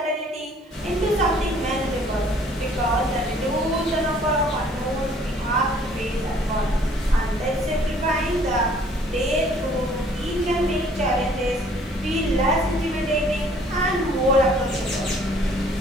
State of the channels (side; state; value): both; normal; correlation 0.58